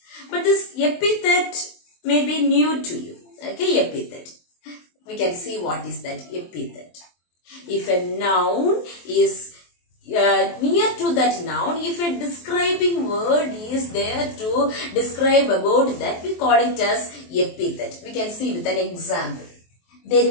But this epithet may be new to you. Okay, epithet. We can see what is that epithet. If a noun is near to that noun, if a describing word is there to describe about that, we call it as epithet. We can see with an example.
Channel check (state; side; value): late; right; 23 ms